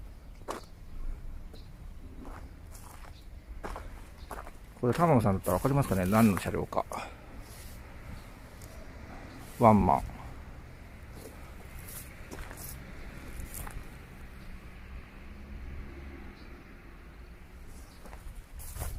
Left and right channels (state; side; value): identical; both; correlation 1.00